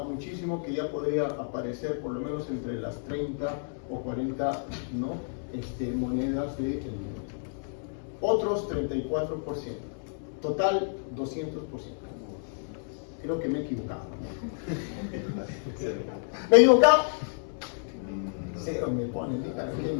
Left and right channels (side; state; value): right; silent; 58 dB below the other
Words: muchísimo, que ya podría aparecer por lo menos entre las 30 o 40, ¿no? Monedas del mundo. Otros 34%, total 200%. Creo que me he equivocado. ¿Me he equivocado? Cero me ponen, dígame, qué